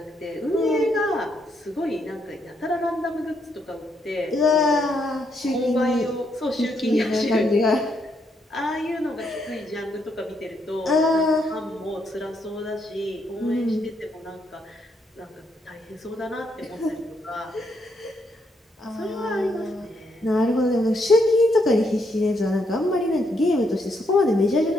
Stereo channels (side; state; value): both; normal; correlation 0.76